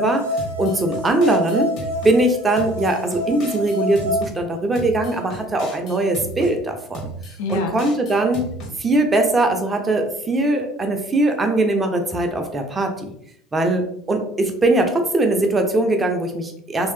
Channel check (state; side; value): normal; both; correlation 0.58